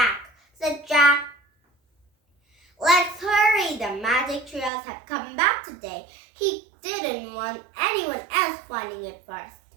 said Jack. "Let's hurry. The magic trios had come back today." He didn't want anyone else finding it first.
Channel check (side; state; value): left; drops out; at 4.7 s